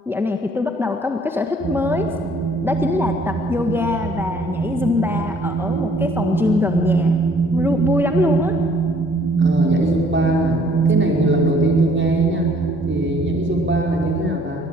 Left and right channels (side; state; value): both; normal; correlation 0.60